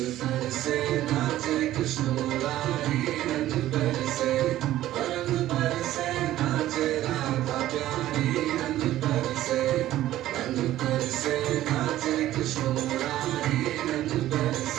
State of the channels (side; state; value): left; quieter; 14.0 dB